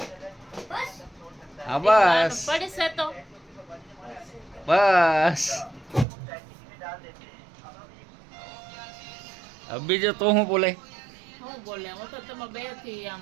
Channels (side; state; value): left; drops out; at 6.1 s